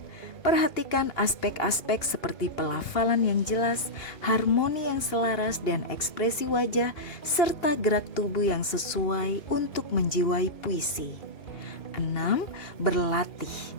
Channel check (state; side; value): late; right; 2.8 ms